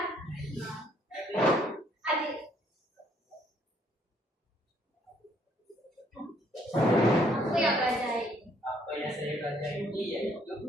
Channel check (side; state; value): both; normal; correlation 0.66